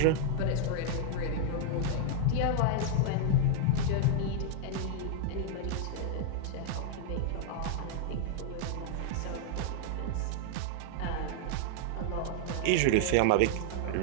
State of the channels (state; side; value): different; both; correlation 0.00